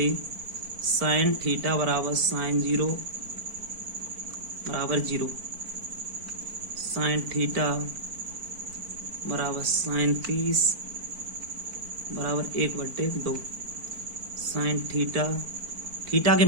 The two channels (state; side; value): late; left; 4.5 ms